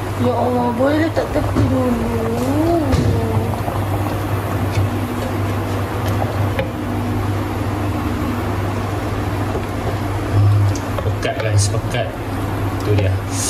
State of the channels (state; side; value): identical; both; correlation 1.00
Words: Ya Allah, boleh letak tepi dulu. Pekat guys, pekat. Itu dia.